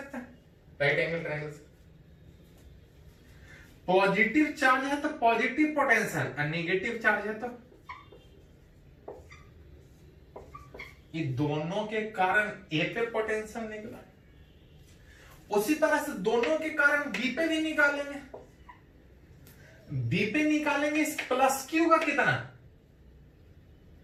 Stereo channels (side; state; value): both; identical; correlation 1.00